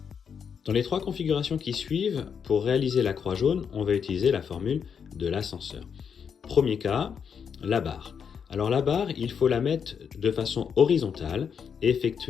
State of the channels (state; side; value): quieter; right; 7.0 dB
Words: Dans les trois configurations qui suivent, pour réaliser la croix jaune, on va utiliser la formule de l'ascenseur. Premier cas, la barre. Alors la barre, il faut la mettre de façon horizontale et